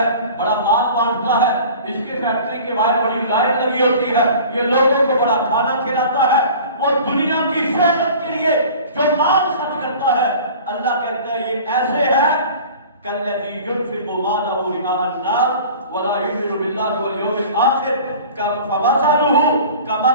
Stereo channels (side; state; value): both; inverted; correlation -0.43